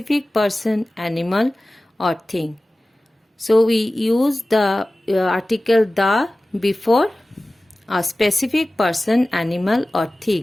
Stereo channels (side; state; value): both; normal; correlation 0.97